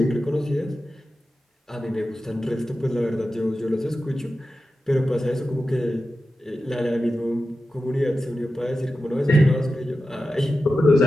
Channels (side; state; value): both; normal; correlation 0.92